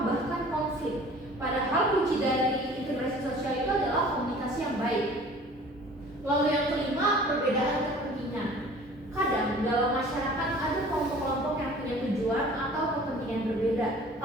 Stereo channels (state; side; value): normal; both; correlation 0.47